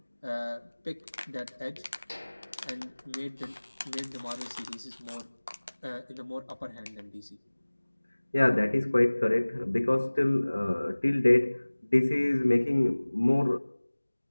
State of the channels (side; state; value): both; inverted; correlation -1.00